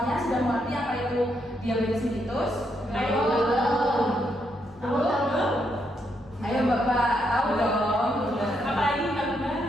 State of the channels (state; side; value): normal; both; correlation 0.78